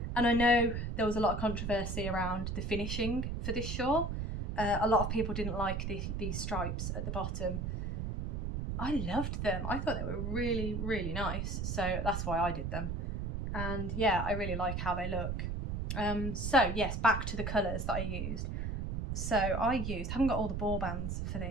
And I know there was a lot of controversy around the finishing for this shawl. A lot of people didn't like these stripes at the bottom. I loved them. I thought they were really, really nice. So that's why I did them. And yeah, I really like how they look. So yes, back to the colours that I used. So I haven't got all the ball bands for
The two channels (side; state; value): right; noise; rumble, 2 dB below the sound